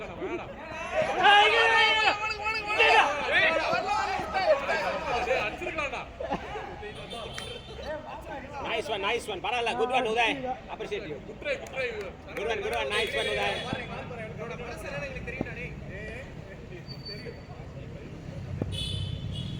Nice one. Paralla, good one Uday. Appreciate you. Good one. Nice one Uday.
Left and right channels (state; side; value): identical; both; correlation 1.00